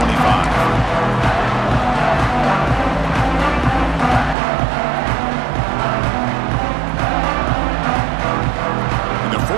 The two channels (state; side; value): drops out; left; at 4.4 s